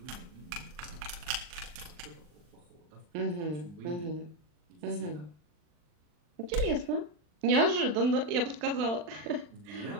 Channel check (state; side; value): late; left; 40 ms